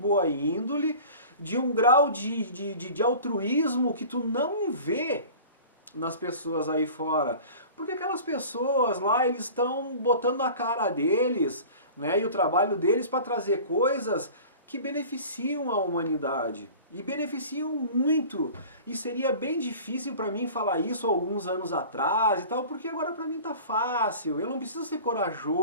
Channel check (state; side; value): inverted; both; correlation -0.41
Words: índole, de um grau de altruísmo que tu não vê nas pessoas aí fora. Porque aquelas pessoas lá, eles estão botando a cara deles, né, e o trabalho deles para trazer coisas que beneficiam a humanidade. E beneficiam muito. E seria bem difícil para mim falar isso alguns anos atrás e tal, porque agora para mim tá fácil. Eu não preciso ser